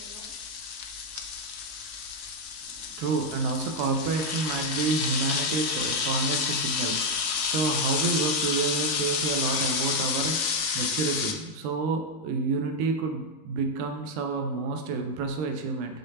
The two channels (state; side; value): late; left; 19 ms